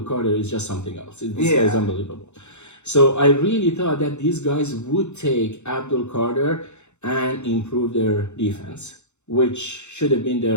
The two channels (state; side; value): late; right; 0.83 ms